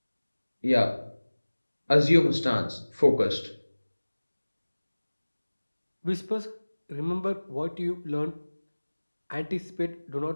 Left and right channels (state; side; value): inverted; both; correlation -1.00